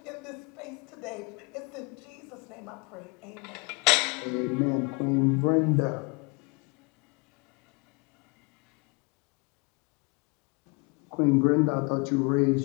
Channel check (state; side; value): quieter; right; 30.0 dB